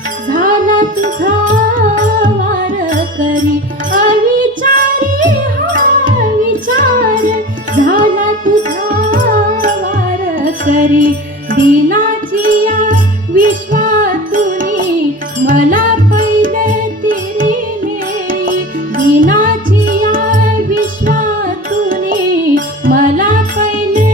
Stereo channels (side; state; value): both; normal; correlation 0.35